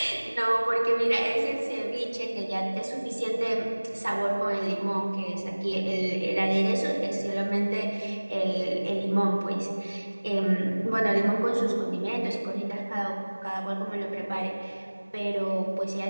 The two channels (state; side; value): inverted; both; correlation -1.00